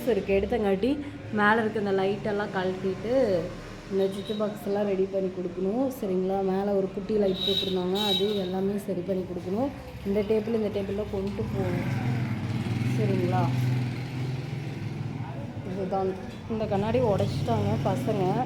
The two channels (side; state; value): both; identical; correlation 1.00